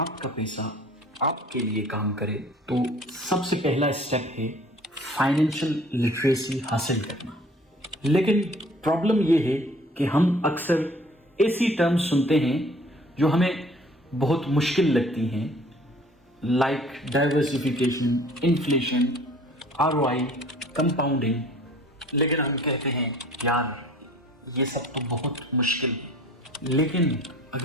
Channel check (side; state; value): both; normal; correlation 0.51